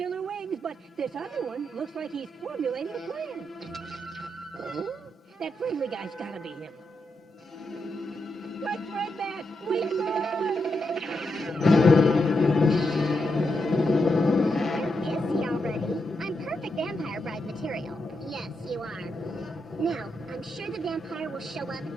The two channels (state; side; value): normal; both; correlation 0.84